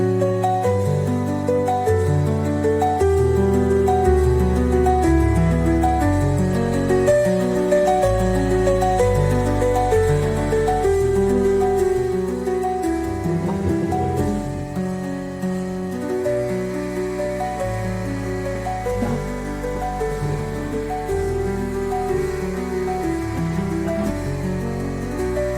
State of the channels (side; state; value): both; identical; correlation 1.00